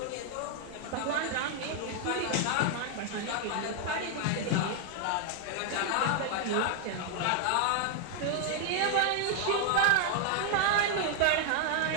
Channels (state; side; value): different; both; correlation 0.00